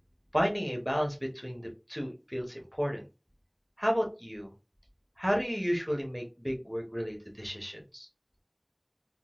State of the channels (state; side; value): identical; both; correlation 1.00